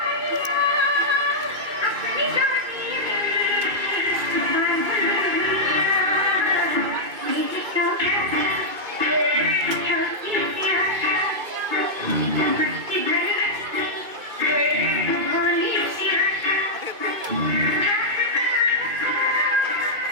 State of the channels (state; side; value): late; left; 2.5 ms